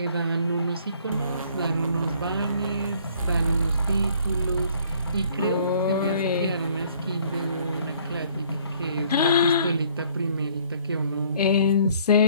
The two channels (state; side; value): inverted; both; correlation -0.60